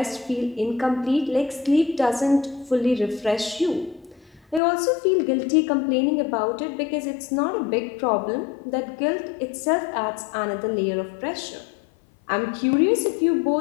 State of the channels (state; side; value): drops out; right; at 4.6 s